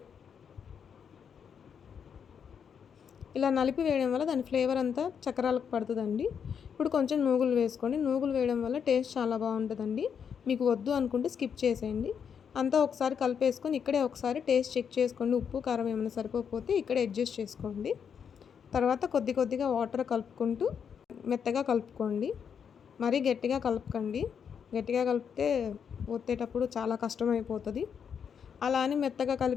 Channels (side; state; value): right; quieter; 7.3 dB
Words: ఇలా నలిపి వేయడం వల్ల దాని ఫ్లేవర్ అంతా చక్రాలకు పడుతుందండి. ఇప్పుడు కొంచెం నూగులు వేసుకోండి. నూగులు వేయడం వల్ల టేస్ట్ చాలా బాగుంటుందండి. మీకు వద్దు అనుకుంటే స్కిప్ చేసేయండి. అంతా ఒకసారి కలిపేసుకొని ఇక్కడే ఒకసారి టేస్ట్ చెక్ చేసుకోండి. ఉప్పు కారం ఏమైనా సరిపోతే ఇక్కడే అడ్జస్ట్ చేసుకోండి. తర్వాత కొద్ది కొద్దిగా వాటర్ కలుపుకుంటూ మెత్తగా కలుపుకోండి. మరీ గట్టిగా కలపకండి. గట్టిగా కలిపితే ఒత్తేటప్పుడు చాలా కష్టమైపోతుంది. అలా అని మెత్తగా